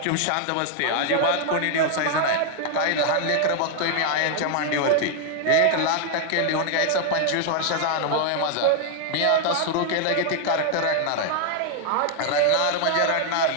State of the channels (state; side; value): different; both; correlation 0.00